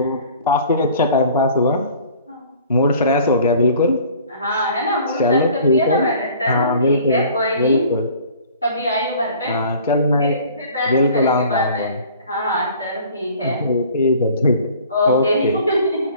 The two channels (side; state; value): both; inverted; correlation -0.50